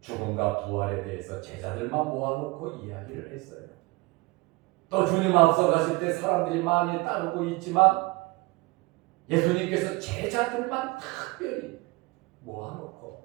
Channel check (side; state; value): left; quieter; 24.0 dB